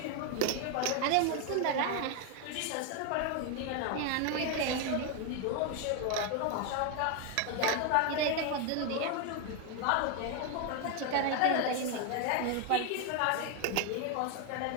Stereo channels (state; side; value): different; both; correlation 0.01